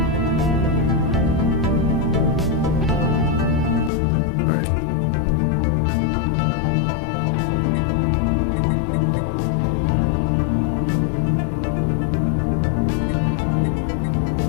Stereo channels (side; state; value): right; drops out; at 3.9 s